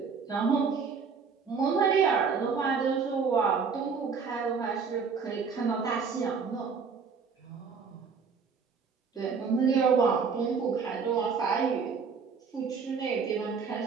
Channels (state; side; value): quieter; left; 5.6 dB